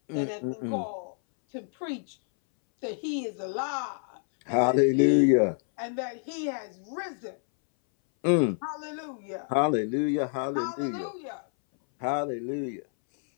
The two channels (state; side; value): silent; right; 59 dB below the other